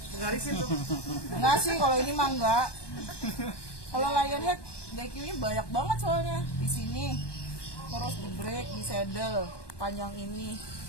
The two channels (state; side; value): late; right; 1.2 ms